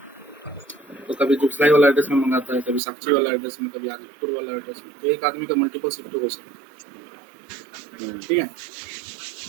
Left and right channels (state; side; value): drops out; left; at 2.8 s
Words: तो कभी जुफ्लाई वाला एड्रेस में मंगाता है, कभी साक्षी वाला एड्रेस में, कभी आदिपुर वाला एड्रेस में। तो एक आदमी का मल्टीपल शिप टू हो सकता है। ठीक है